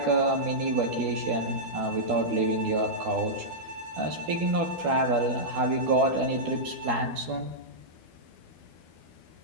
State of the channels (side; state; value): left; late; 12 ms